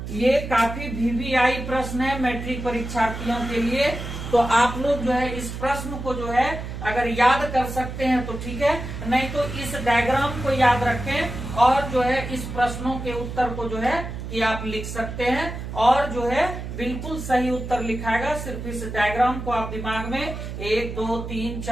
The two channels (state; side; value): noise; right; hum, 7 dB below the sound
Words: ये काफी वीवीआई प्रश्न है मैट्रिक परीक्षार्थियों के लिए। तो आप लोग जो है इस प्रश्न को जो है अगर याद कर सकते हैं तो ठीक है, नहीं तो इस डायग्राम को याद रखें और जो है इस प्रश्नों के उत्तर को जो है कि आप लिख सकते हैं और जो है बिल्कुल सही उत्तर लिखाएगा। सिर्फ इस डायग्राम को आप दिमाग में 1 2 3